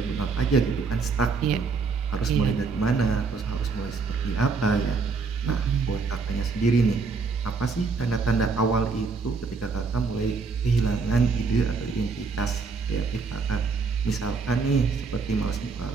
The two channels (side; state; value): left; quieter; 4.5 dB